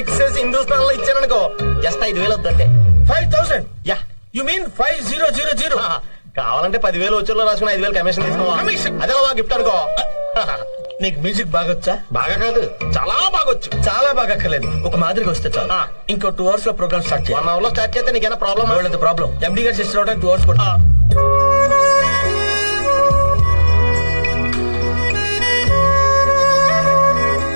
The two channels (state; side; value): inverted; both; correlation -1.00